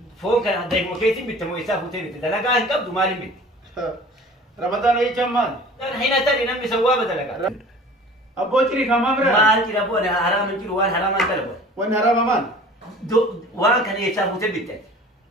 foon kana deemuu keessi bitte moo isaa fuutee bitte dalagaa hin qabdu maaliin bitte Ramadan eechan maal hina tani namni sawwaaba dalagaa Abbo ciri kama bira maal ciri abbo ana haram jiru waan haraman dalabo waan harama man waan kana eechaa fuutee bitte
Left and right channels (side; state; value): both; normal; correlation 0.45